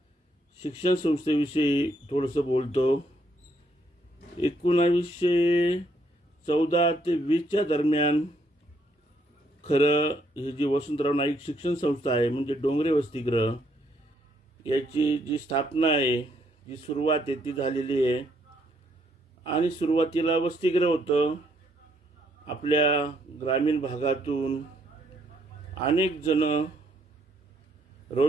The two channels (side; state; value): both; normal; correlation 0.72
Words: शिक्षण संस्थेविषयी थोडंसं बोलतो. 1914 ते 20च्या दरम्यान खरं ही जी वसंतराव नाईक शिक्षण संस्था आहे म्हणजे डोंगरे वसतिगृह याची जी स्थापना आहे, जी सुरुवात आहे ती झालेली आहे. आणि सुरुवातीला वसतिगृह होतं. आपल्या ग्रामीण भागातून अनेक जण